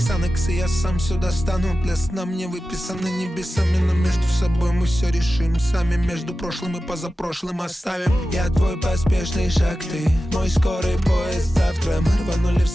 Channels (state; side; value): normal; both; correlation 0.94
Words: и я сам все достану. Для сна мне выписаны небесами, но между собой мы все решим сами. Между прошлым и позапрошлым оставим. Я твой поспешный шаг, ты мой скорый поезд. Завтра мы рванули в